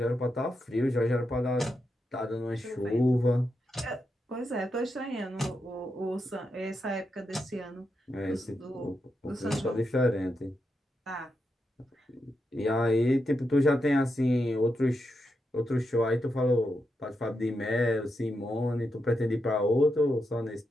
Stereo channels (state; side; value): normal; both; correlation 0.85